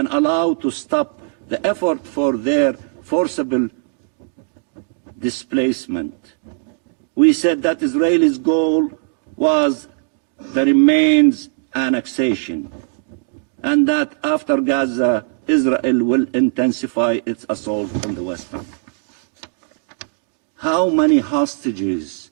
allow to stop the effort for their forcible displacement. We said that Israel's goal was the remains annexation, and that after Gaza, Israel will intensify its assault on the West Bank. How many hostages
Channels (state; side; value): silent; left; digital silence